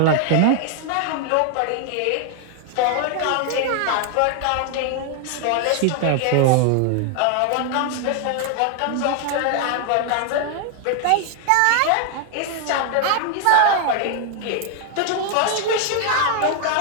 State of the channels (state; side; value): different; both; correlation 0.00